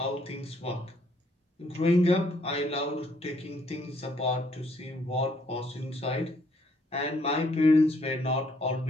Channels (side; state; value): both; normal; correlation 0.68